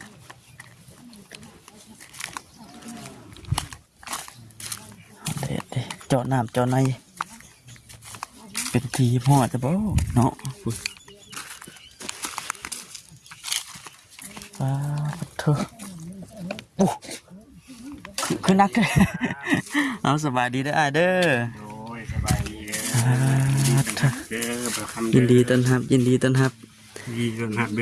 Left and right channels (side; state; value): both; identical; correlation 1.00